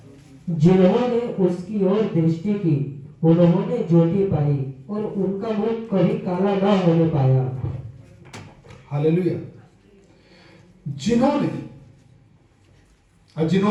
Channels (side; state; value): both; identical; correlation 1.00